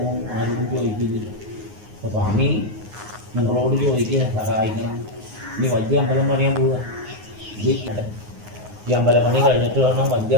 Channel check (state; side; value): late; left; 9.6 ms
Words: ആരോടും ചോദിക്കില്ല. അപ്പോൾ സ്വാമി നിങ്ങളോട് ചോദിക്കുക, സഹായിക്കണം. ഇനി വലിയ അമ്പലം പണിയാൻ പോവുക. ഈ അമ്പലപ്പണി കഴിഞ്ഞിട്ട് വേണം വലിയ